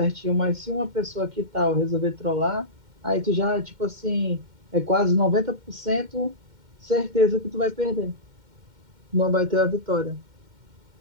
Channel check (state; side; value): late; left; 2.1 ms